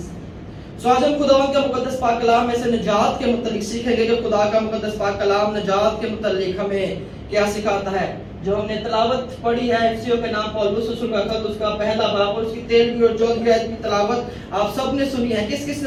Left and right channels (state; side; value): identical; both; correlation 1.00